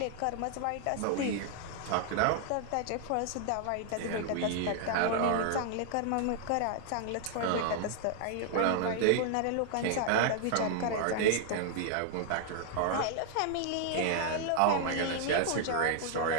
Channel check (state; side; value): different; both; correlation 0.00